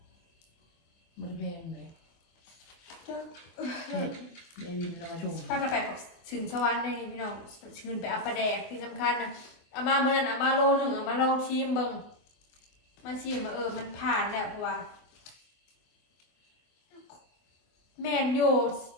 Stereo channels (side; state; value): right; late; 24 ms